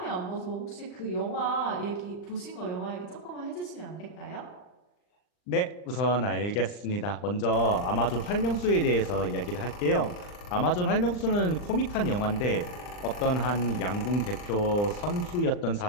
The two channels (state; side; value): late; right; 39 ms